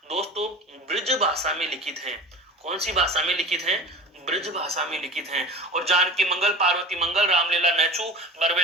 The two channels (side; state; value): both; normal; correlation 0.34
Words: दोस्तों ब्रज भाषा में लिखित हैं। कौन सी भाषा में लिखित हैं? ब्रज भाषा में लिखित हैं। और जानकी मंगल, पार्वती मंगल, रामलीला नहछू, बरवे